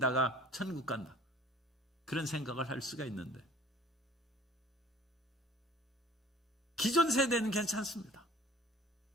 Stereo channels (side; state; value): both; normal; correlation 0.50